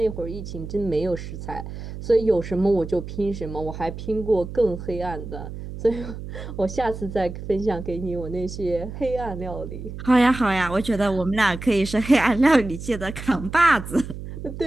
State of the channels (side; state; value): right; noise; hum, 10 dB below the sound